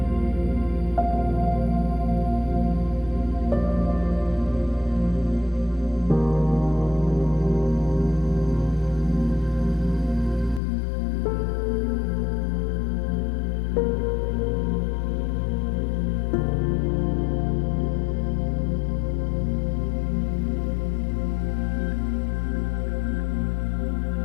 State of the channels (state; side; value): drops out; right; at 10.6 s